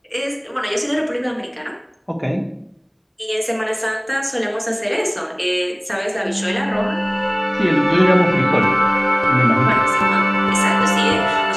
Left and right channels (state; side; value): identical; both; correlation 1.00